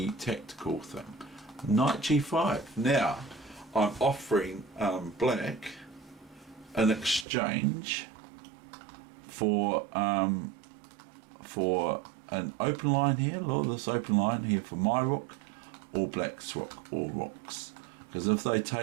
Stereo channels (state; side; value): drops out; left; at 7.2 s